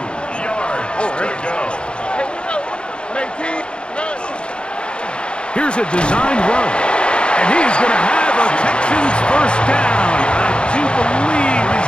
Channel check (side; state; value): right; late; 0.055 ms